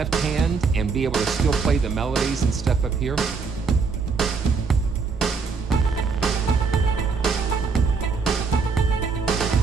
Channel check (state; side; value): quieter; left; 4.9 dB